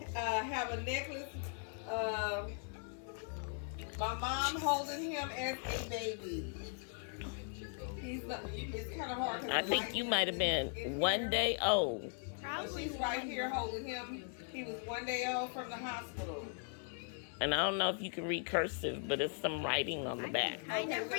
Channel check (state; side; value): silent; right; 52 dB below the other